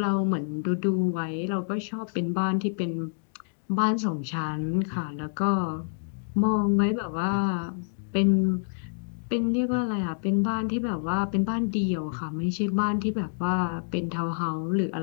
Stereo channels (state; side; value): silent; right; digital silence